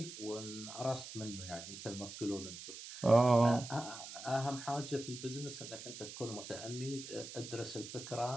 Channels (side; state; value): right; noise; hiss, 11 dB below the sound